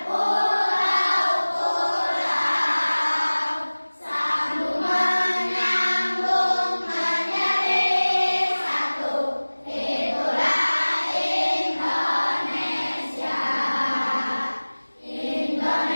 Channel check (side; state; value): both; inverted; correlation -1.00